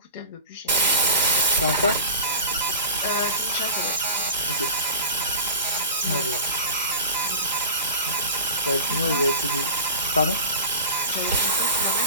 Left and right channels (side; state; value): both; inverted; correlation -0.34